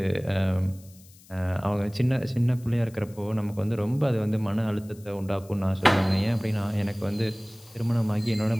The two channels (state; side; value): noise; left; hiss, 25 dB below the sound